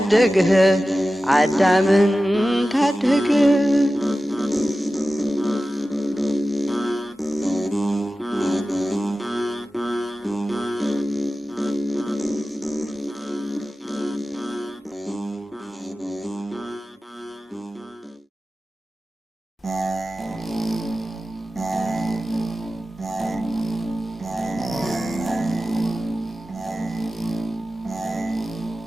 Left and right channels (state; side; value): normal; both; correlation 0.94